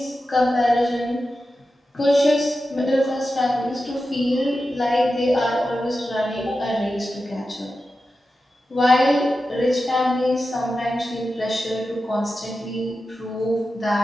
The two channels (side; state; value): both; normal; correlation 0.92